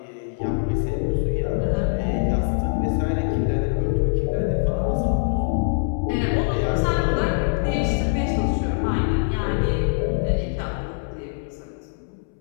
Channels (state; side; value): silent; right; 63 dB below the other